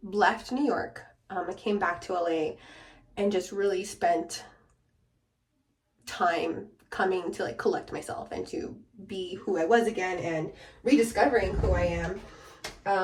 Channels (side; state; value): both; identical; correlation 1.00